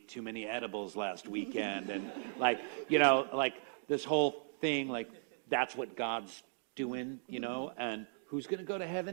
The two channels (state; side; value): silent; left; digital silence